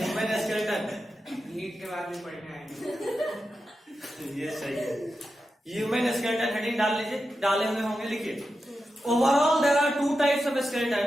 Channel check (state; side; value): normal; both; correlation 0.90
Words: स्केलेटन नीट के बाद में पढ़ने आएंगे। ये सही है। ह्यूमन स्केलेटन हेडिंग डाल लीजिए, डाले हुए होंगे, लिखिए। Overall there are 2 types of skeleton.